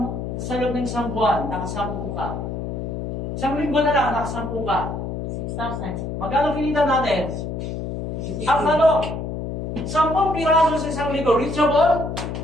isang buwan, nakasampu ka. Isang linggo na lang, nakasampu ka. 6,000. Magkano kinita natin? Ang tanong, 10 piraso sa isang linggo, reachable?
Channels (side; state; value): left; noise; hum, 4 dB below the sound